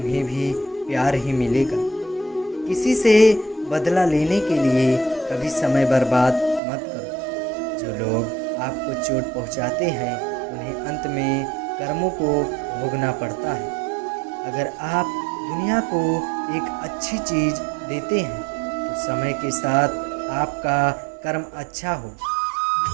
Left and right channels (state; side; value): drops out; left; at 6.6 s